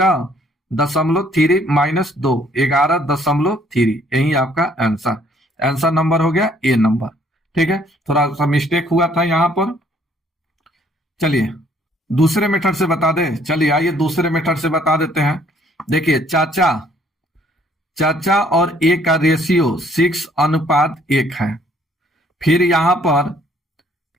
माइनस 2, 11.3। यही आपका आंसर। आंसर नंबर हो गया ए नंबर। ठीक है, थोड़ा सा मिस्टेक हुआ था यहां पर। चलिए दूसरे मेथड से बता दे। चलिए आइए दूसरे मेथड से बता देते हैं। देखिए चाचा और ए का रेशियो 6:1 है। फिर यहां पर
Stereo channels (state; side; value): normal; both; correlation 0.62